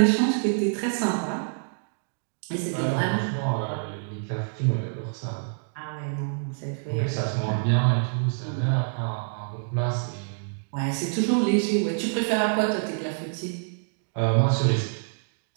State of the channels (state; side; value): silent; left; digital silence